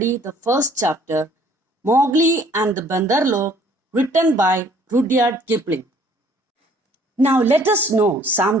the first chapter, Mowgli and the Bandar, written by Rudyard Kipling. Now let us know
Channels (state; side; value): normal; both; correlation 0.58